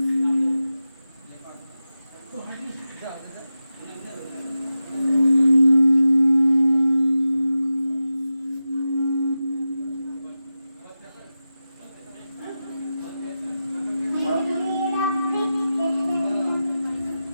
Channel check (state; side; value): inverted; both; correlation -0.93